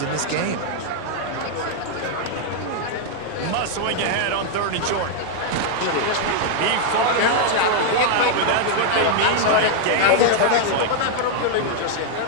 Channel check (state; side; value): different; both; correlation 0.00